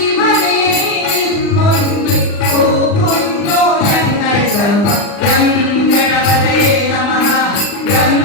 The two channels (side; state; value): right; late; 40 ms